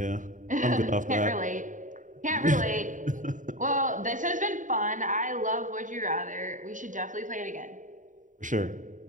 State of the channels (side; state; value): left; late; 0.37 ms